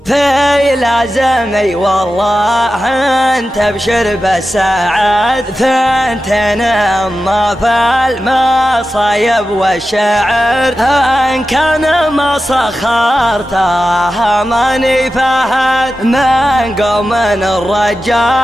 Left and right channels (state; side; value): normal; both; correlation 0.92